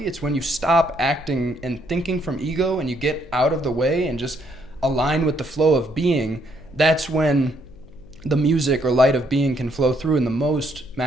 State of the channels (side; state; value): left; noise; hum, 23 dB below the sound